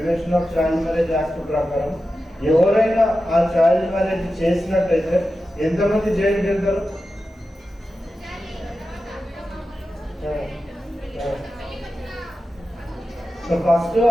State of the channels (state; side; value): normal; both; correlation 0.92